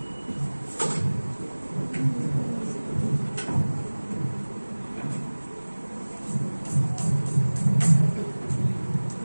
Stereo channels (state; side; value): inverted; both; correlation -1.00